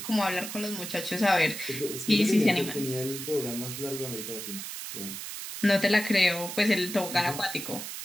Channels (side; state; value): right; noise; hiss, 8 dB below the sound